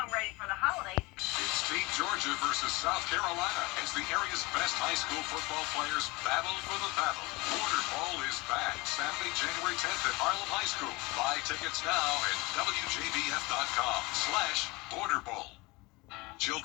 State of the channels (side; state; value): right; quieter; 24.0 dB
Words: ready for the holidays. It's Team Georgia versus South Carolina as the area's best high school football players battle for the battle. Border Bowl is back Saturday, January 10th at Harlem High School. Buy tickets now at WJBF.com/Border Bowl.